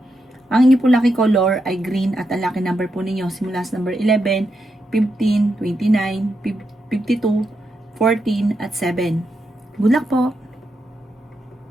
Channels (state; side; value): normal; both; correlation 0.84